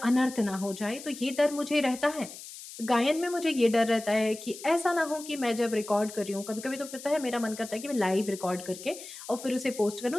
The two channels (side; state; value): left; noise; hiss, 14 dB below the sound